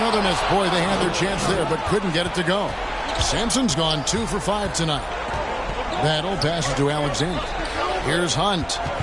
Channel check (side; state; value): both; identical; correlation 1.00